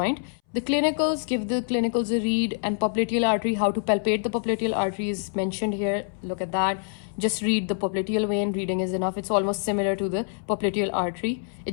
The clinicals, give the clinicals a read, and popliteal artery, how to palpate the popliteal artery is mentioned here. Look at that. Just read the popliteal vein. Reading is enough. It's almost similar to the popliteal artery. It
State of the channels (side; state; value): right; silent; 61 dB below the other